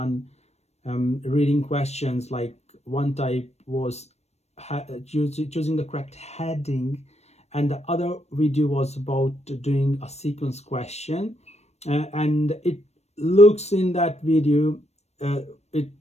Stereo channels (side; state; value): right; late; 0.31 ms